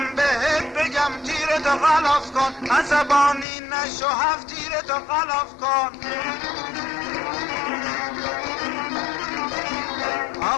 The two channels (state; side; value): drops out; right; at 3.5 s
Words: بهت بگم تیرتو غلاف کن، عصبانی نشو، هفت تیرتو غلاف کن.